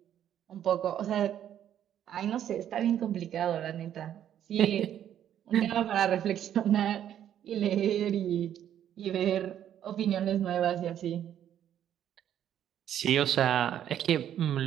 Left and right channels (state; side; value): quieter; left; 10.4 dB